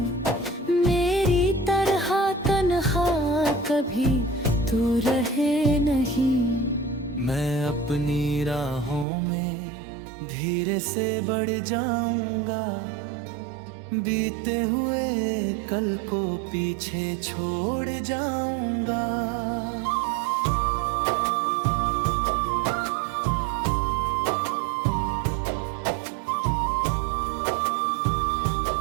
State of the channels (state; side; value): drops out; left; at 9.1 s